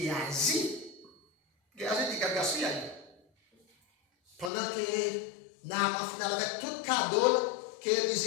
Géasi dit gaspillage. Pendant que Naaman final avec tout cadeau, que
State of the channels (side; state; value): right; drops out; at 4.5 s